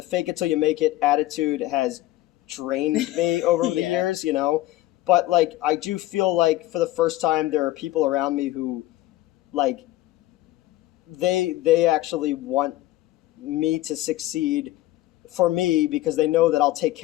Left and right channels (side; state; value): right; quieter; 15.9 dB